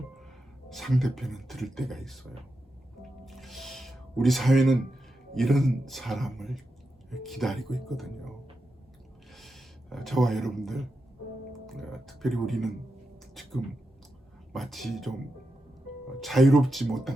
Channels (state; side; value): normal; both; correlation 0.88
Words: 상대편은 들을 때가 있어요. 우리 사회는 이런 사람을 기다리고 있거든요. 저와 여러분들, 특별히 우리는 지금 마치 좀 자유롭지